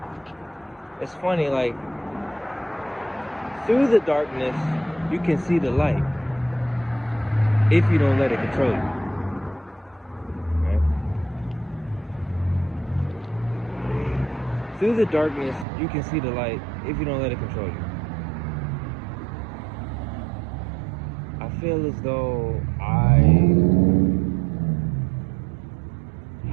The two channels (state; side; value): drops out; left; at 15.7 s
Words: It's funny, like, through the darkness, you can see the light if you don't let it control you. Right? Through the darkness, you can see the light if you don't let it control you. I feel as though I